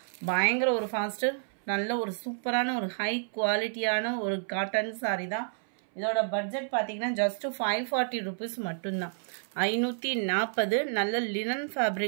பயங்கர ஒரு ஃபாஸ்ட்டு நல்ல ஒரு சூப்பரான ஒரு ஹை குவாலிட்டியான ஒரு காட்டன் சாரி தான். இதோட பட்ஜெட் பார்த்தீங்கன்னா ஜஸ்ட் 540 ருபீஸ் மட்டும்தான். 540 நல்ல லினன்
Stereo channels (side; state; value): left; silent; 58 dB below the other